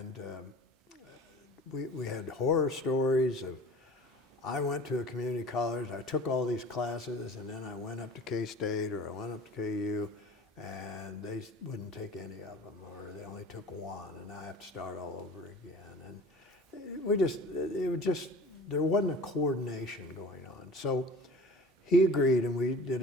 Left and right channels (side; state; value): both; normal; correlation 0.42